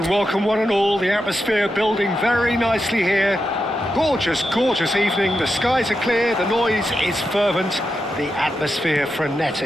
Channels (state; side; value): normal; both; correlation 0.87